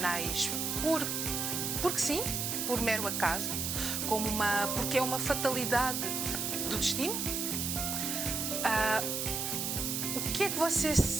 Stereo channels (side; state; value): right; noise; hiss, 1 dB below the sound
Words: porque sim, por mero acaso, porque é uma fatalidade do destino? O que é que você